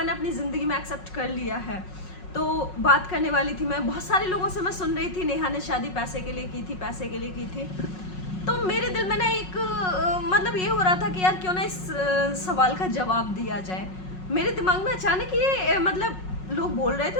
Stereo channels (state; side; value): late; right; 5.4 ms